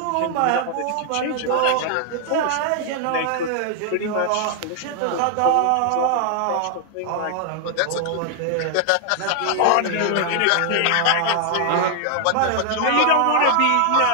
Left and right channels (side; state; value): both; different; correlation 0.00